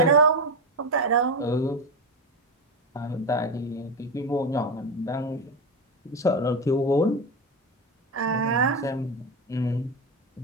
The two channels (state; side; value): normal; both; correlation 0.15